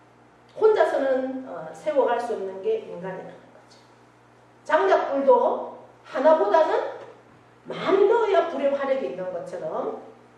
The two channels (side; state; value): both; identical; correlation 1.00